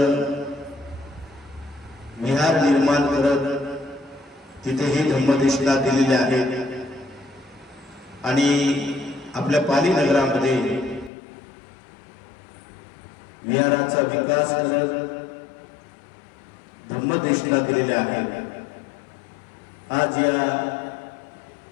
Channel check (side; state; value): right; drops out; at 11.1 s